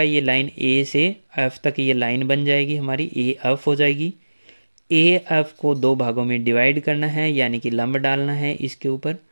ये लाइन ए से एफ तक ये लाइन बन जाएगी हमारी, ए एफ हो जाएगी। ए एफ को दो भागों में डिवाइड करना है, यानी कि लंब डालना है इसके ऊपर,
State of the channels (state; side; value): inverted; both; correlation -1.00